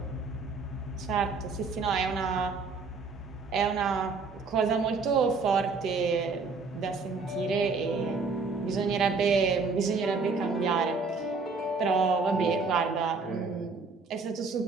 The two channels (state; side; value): quieter; left; 4.4 dB